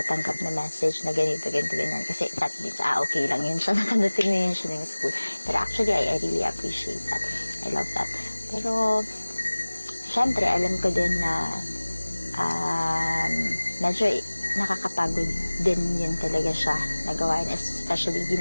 na message na ganito, ganyan. Kasi that means, okay lang yun siya. Nakadating na yun siya ng school. Pero actually, I really appreciate that. I love that. Pero, syempre, alam ko din na medyo nakakapagod din yun talaga siya nagawain, especially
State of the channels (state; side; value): inverted; both; correlation -1.00